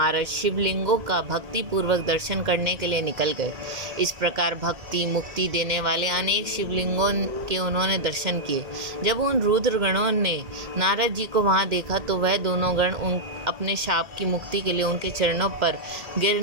शिवलिंगों का भक्ति पूर्वक दर्शन करने के लिए निकल गए। इस प्रकार भक्ति मुक्ति देने वाले अनेक शिवलिंगों के उन्होंने दर्शन किए। जब उन रुद्रगणों ने नारद जी को वहां देखा तो वह दोनों गण अपने शाप की मुक्ति के लिए उनके चरणों पर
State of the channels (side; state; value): left; late; 2.1 ms